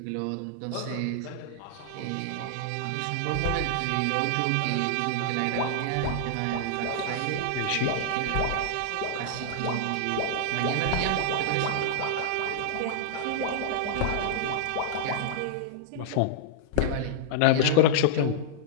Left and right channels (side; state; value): both; different; correlation -0.01